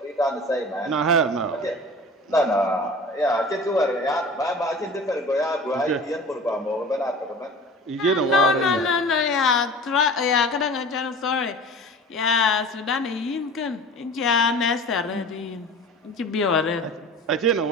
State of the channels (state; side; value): normal; both; correlation 0.39